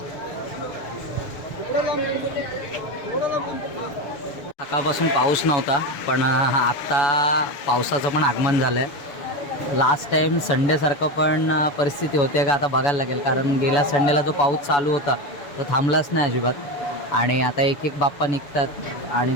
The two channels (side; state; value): right; late; 7.0 ms